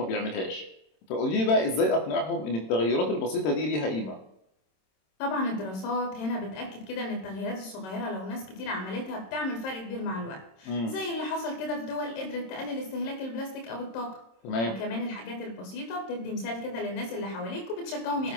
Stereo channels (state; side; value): late; right; 26 ms